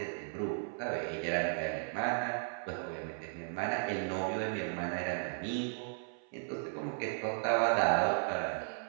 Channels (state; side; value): silent; left; 54 dB below the other